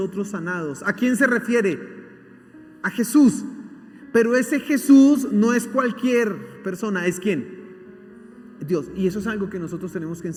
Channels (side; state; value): both; identical; correlation 1.00